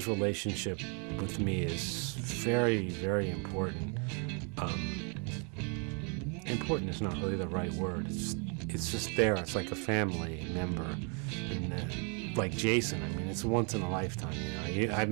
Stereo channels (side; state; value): left; quieter; 36.5 dB